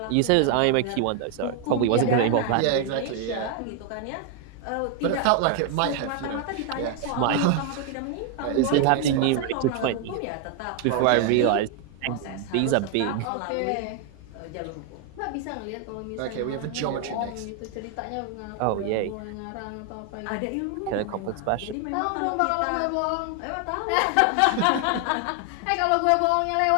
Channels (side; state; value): both; different; correlation 0.00